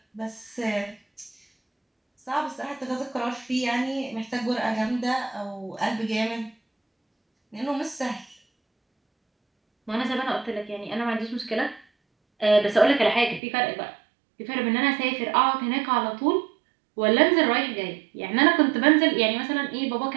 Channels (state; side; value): drops out; left; at 13.4 s